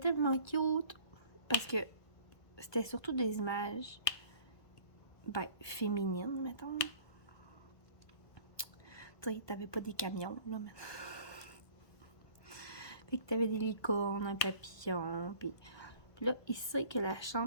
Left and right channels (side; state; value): right; late; 1.5 ms